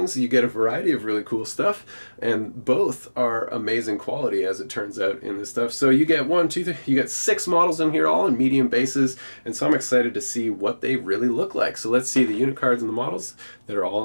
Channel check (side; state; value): both; inverted; correlation -1.00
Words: you get a variety of really cool stuff, and both are amazing quality as it turns out in this stuff. So you get you get 6 models in here, all in medium bases, and so I'm excited to see what they really look like. So let's see the unit cards and the models that are